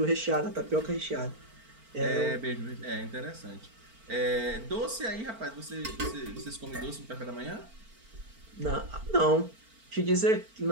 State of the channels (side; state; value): left; late; 4.4 ms